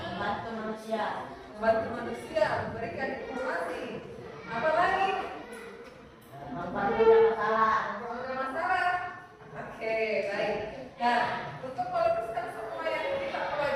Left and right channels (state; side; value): identical; both; correlation 1.00